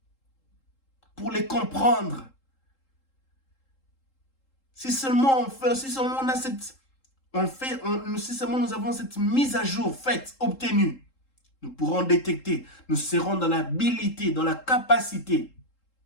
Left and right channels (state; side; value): late; right; 3.8 ms